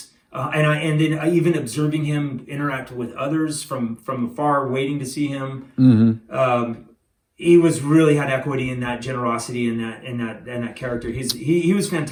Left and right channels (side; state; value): both; identical; correlation 1.00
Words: And then even observing him interact with others from afar, waiting to see him. Mm-hmm. He was really had equity in that generosity and that character. He was